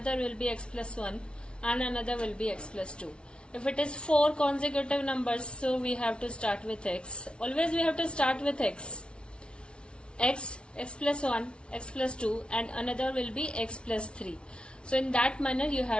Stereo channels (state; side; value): late; right; 0.058 ms